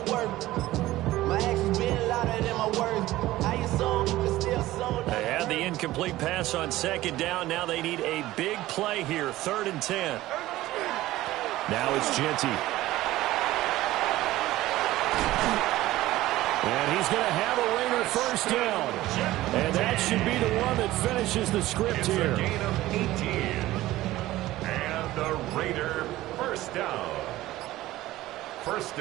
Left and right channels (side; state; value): left; quieter; 16.4 dB